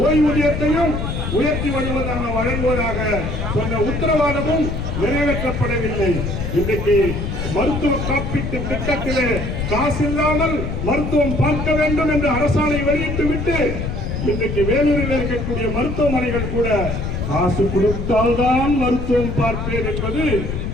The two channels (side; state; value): left; noise; rumble, 3 dB below the sound